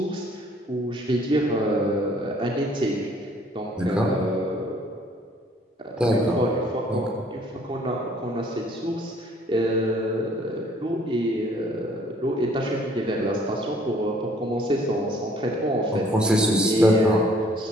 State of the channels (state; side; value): normal; both; correlation 0.59